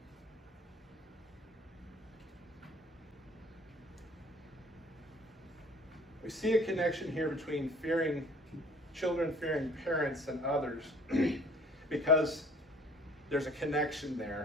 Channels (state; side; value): normal; both; correlation 0.53